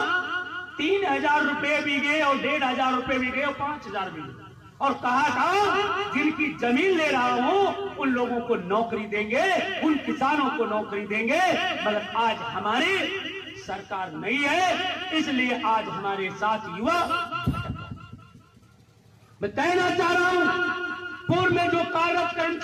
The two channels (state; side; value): identical; both; correlation 1.00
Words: 3000 रुपए बीघे, और 1500 रुपए बीघे, और 5000 बीघे। और कहा था जिनकी जमीन ले रहा हूं उन लोगों को नौकरी देंगे, उन किसानों को नौकरी देंगे। मगर आज हमारी सरकार नहीं है, इसलिए आज हमारे साथ युवा। मैं कहना चाह रहा हूं, पूर्व में जो कार्यरत